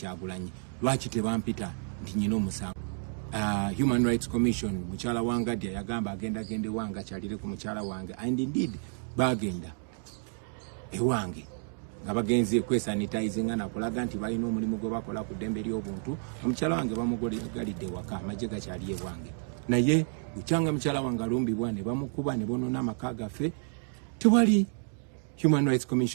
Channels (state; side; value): silent; left; 57 dB below the other